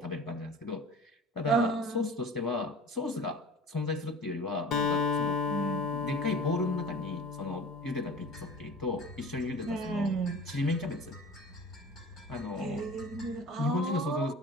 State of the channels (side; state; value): both; normal; correlation 0.40